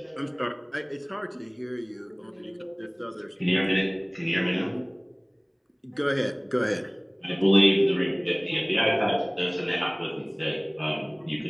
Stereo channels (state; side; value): identical; both; correlation 1.00